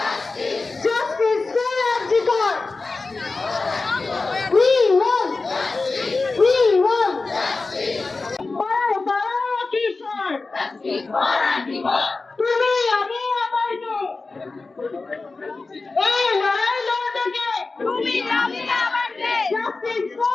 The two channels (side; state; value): right; quieter; 3.8 dB